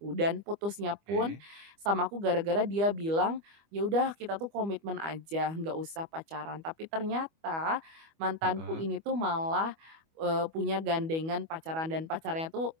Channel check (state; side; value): late; left; 25 ms